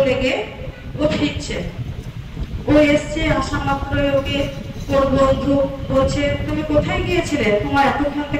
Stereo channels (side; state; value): both; identical; correlation 1.00